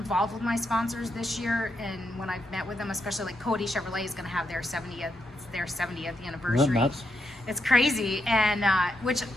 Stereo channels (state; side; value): normal; both; correlation 0.82